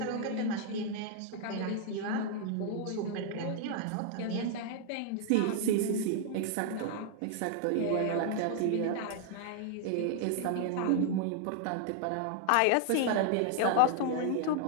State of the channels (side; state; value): both; different; correlation -0.01